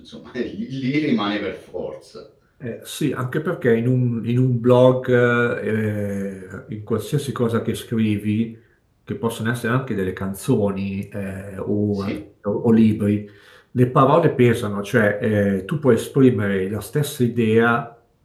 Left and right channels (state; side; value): identical; both; correlation 1.00